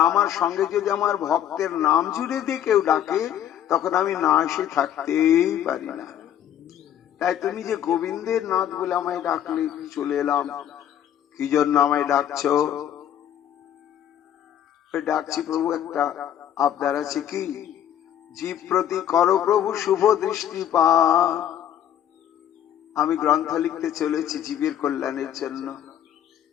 আমার সঙ্গে যদি আমার ভক্তের নাম জুড়ে দিয়ে কেউ ডাকে তখন আমি না এসে থাকতেই পারি না। তাই তুমি যে গোবিন্দের নাথ বলে আমায় ডাকলে, চলে এলাম। কি জন্য আমায় ডাকছো? ডাকছি প্রভু, একটা আবদার আছে। কি? জীব প্রতি করো প্রভু শুভ দৃষ্টিপাত। আমি গ্রন্থ লিখতে চলেছি জীবের কল্যাণের জন্য।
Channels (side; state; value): right; quieter; 10.4 dB